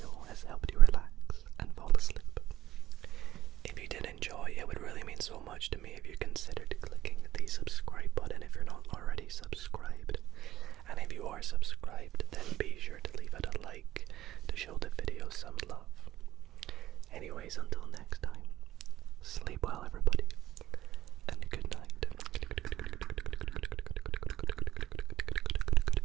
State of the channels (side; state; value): left; quieter; 13.6 dB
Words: has helped you relax and fall asleep. If you did enjoy, it would really mean so much to me if you considered clicking the subscribe button if you're not already subscribed. And if you are subscribed, then be sure to leave it a like to show the video some love. Anyways, until